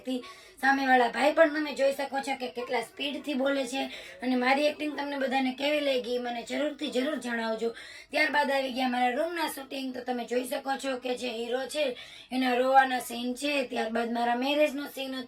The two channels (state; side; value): identical; both; correlation 1.00